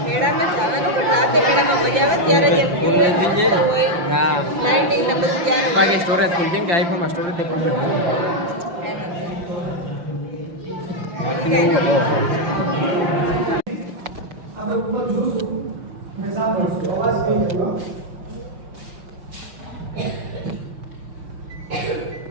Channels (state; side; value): late; left; 5.8 ms